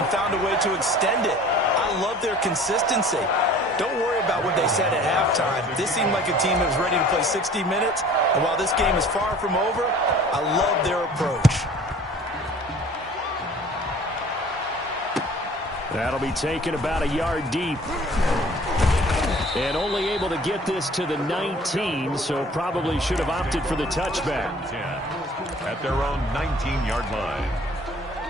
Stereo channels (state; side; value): normal; both; correlation 0.49